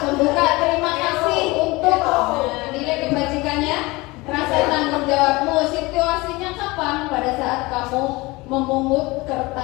membuka terima kasih untuk nilai kebajikannya. Rasa tanggung jawabmu. Situasinya kapan? Pada saat kamu memungut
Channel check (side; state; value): right; quieter; 22.7 dB